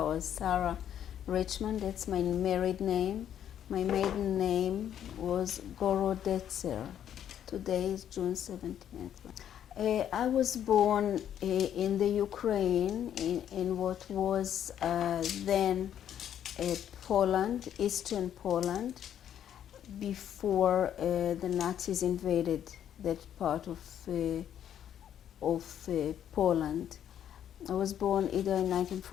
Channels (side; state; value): right; quieter; 10.0 dB